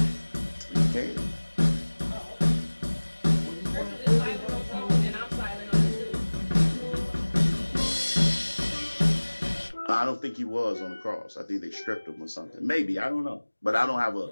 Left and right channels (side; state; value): both; inverted; correlation -1.00